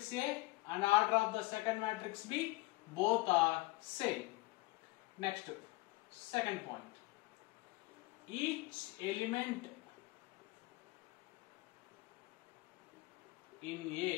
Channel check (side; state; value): right; quieter; 21.6 dB